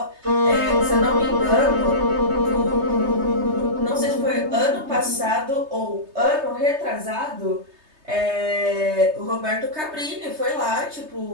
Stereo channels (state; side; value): late; left; 3.3 ms